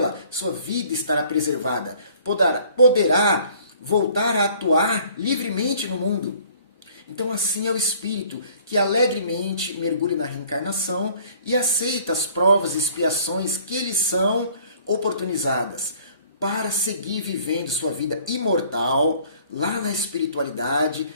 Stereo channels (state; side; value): inverted; both; correlation -0.55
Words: sua vida estará preservada. Poderá voltar a atuar livremente no mundo. Então assim é o espírito que alegremente mergulha na reencarnação e aceita as provas e expiações que lhe são oportunizadas para seguir vivendo sua vida imortal lá na espiritualidade